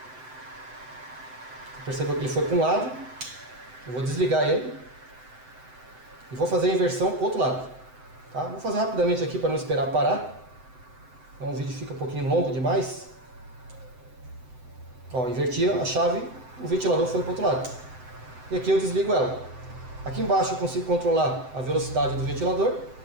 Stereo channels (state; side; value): late; left; 7.8 ms